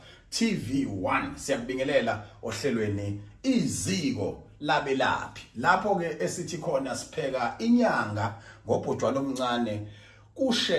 TV1 siyakubingelela ohlelweni iziko labelaphi lapho ke esithi khona sipheka inyanga ngobhotshwana omncane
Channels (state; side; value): identical; both; correlation 1.00